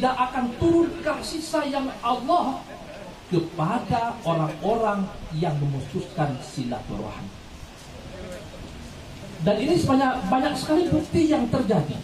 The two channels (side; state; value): both; identical; correlation 1.00